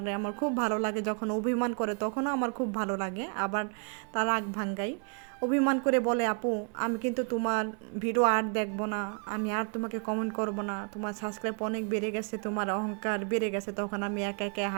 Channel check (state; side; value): quieter; left; 39.2 dB